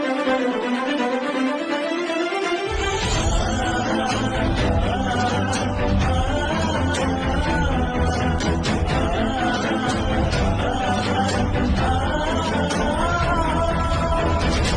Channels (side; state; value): both; identical; correlation 1.00